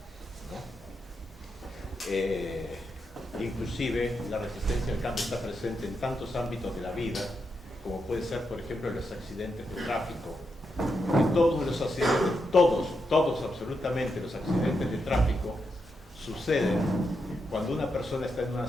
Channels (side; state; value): both; normal; correlation 0.84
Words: ¿no? inclusive la resistencia al cambio está presente en tantos ámbitos de la vida, como puede ser, por ejemplo, los accidentes de tráfico. Que todos los accidentes, todos absolutamente los accidentes de tráfico suceden cuando una persona está en una